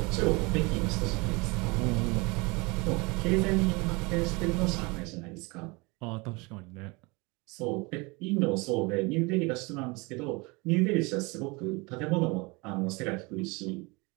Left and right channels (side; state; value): left; quieter; 26.8 dB